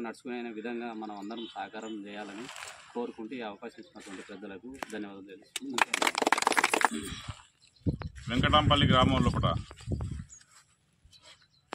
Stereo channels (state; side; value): identical; both; correlation 1.00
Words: నడుచుకునే విధంగా మనం అందరం సహకారం చేయాలని కోరుకుంటూ ఈ అవకాశం ఇచ్చినటువంటి పెద్దలకు ధన్యవాదాలు తెలుస్తున్నాను. వెంకటాంపల్లి గ్రామం లోపల